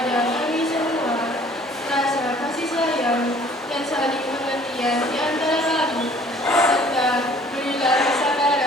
kami semua rasa kasih sayang dan saling pengertian di antara kami, serta berilah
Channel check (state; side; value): normal; both; correlation 0.54